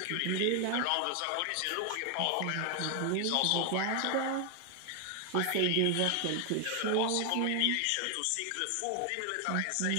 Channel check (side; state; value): both; different; correlation 0.00